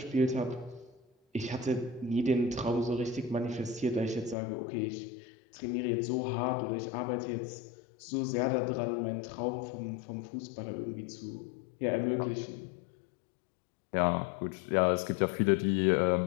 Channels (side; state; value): right; drops out; at 4.4 s